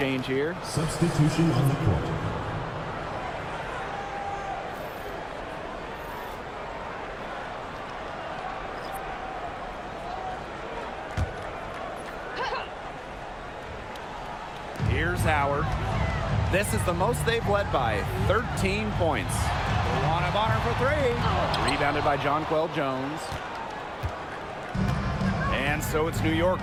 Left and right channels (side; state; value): both; identical; correlation 1.00